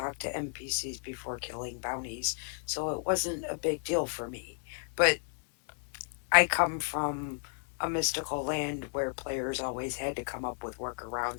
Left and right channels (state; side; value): silent; right; digital silence